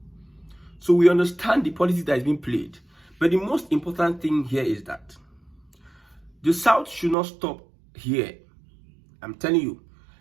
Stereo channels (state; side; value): drops out; left; at 7.2 s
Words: So we understand the politics that is being played. But the most important thing here is that the South should not stop here. I'm telling you,